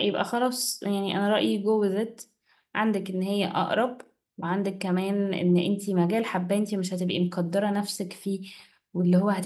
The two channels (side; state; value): both; identical; correlation 1.00